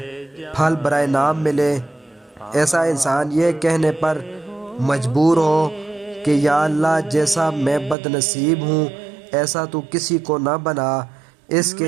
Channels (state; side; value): drops out; left; at 8.0 s